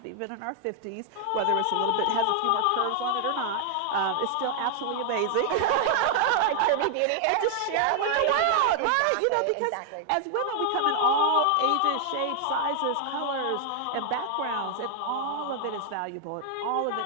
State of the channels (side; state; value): both; different; correlation 0.00